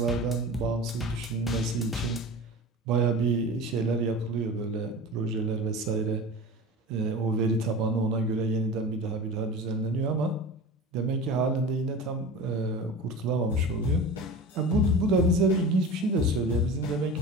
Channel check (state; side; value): normal; both; correlation 0.33